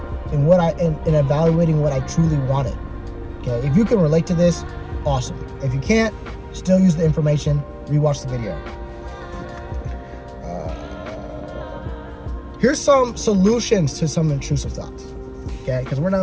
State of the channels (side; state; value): both; identical; correlation 1.00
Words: and and evaluating what I truly wanted. Okay, if you can relate to this, awesome. If you can't, still use the information, rewatch the video. Here's some solutions to some intrusive thoughts. Okay, because we're